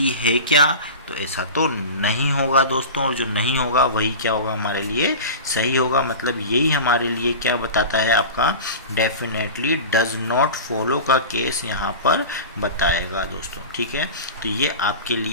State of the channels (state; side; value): inverted; both; correlation -0.31